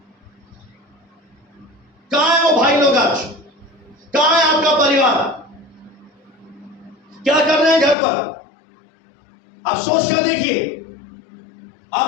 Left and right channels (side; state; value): right; drops out; at 8.0 s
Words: कहां है वो भाई लोग आज? कहां है आपका परिवार? क्या कर रहे हैं घर पर? आप सोच कर देखिए।